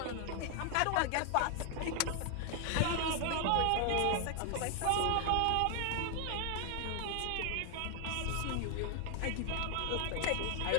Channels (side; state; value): both; different; correlation 0.00